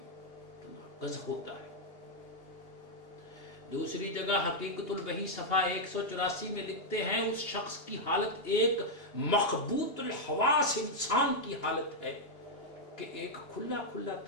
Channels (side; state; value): right; late; 2.8 ms